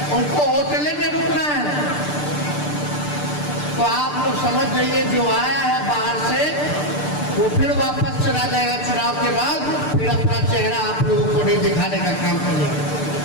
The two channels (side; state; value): right; late; 6.7 ms